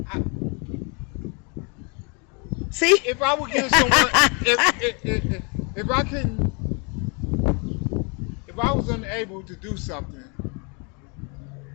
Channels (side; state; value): right; quieter; 33.9 dB